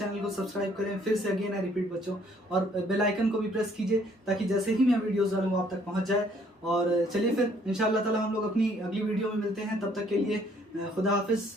को सब्सक्राइब करें। फिर से अगेन आई रिपीट बच्चों, और बेल आइकन को भी प्रेस कीजिए, ताकि जैसे ही मैं वीडियोस डालूँ वो आप तक पहुंच जाए। और चलिए फिर इंशाअल्लाह ताला हम लोग अपनी अगली वीडियो में मिलते हैं। तब तक के लिए खुदा हाफिज़,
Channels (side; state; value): both; normal; correlation 0.63